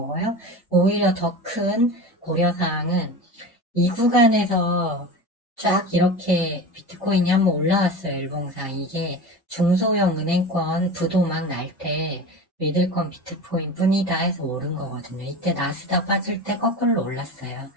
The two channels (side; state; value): both; normal; correlation 0.30